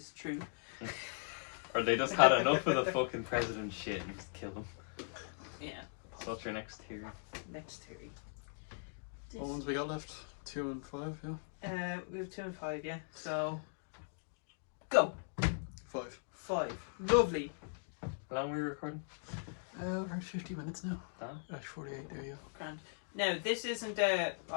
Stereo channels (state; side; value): silent; right; digital silence